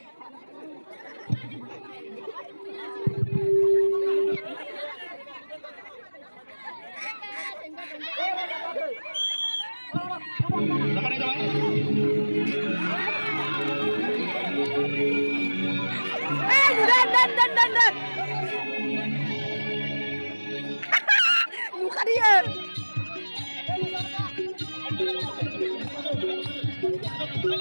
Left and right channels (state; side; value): inverted; both; correlation -1.00